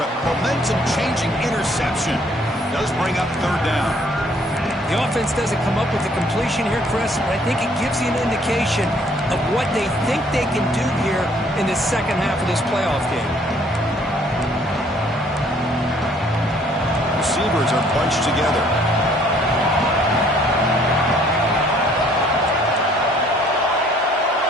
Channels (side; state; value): both; normal; correlation 0.61